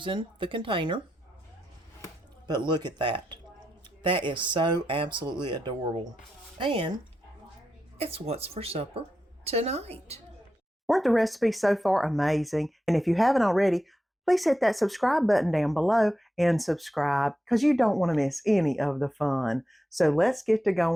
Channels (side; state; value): both; normal; correlation 0.88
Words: the container. But look at that. That is so absolutely adorable. And it's what's for supper tonight. Weren't the recipes so far amazing? And if you haven't already, please hit that subscribe button down below and subscribe because you don't want to miss any of the fun. So let's get to